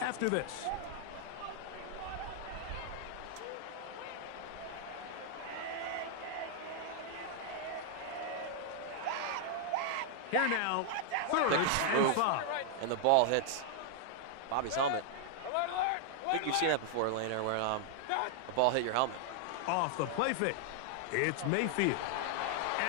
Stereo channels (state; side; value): different; both; correlation 0.00